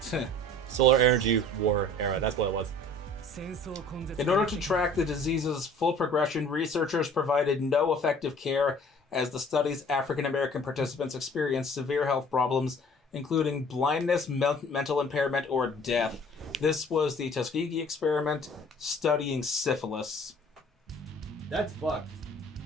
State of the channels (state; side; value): normal; both; correlation 0.50